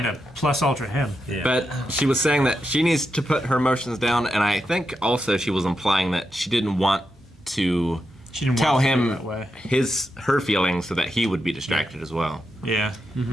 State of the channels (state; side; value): normal; both; correlation 0.86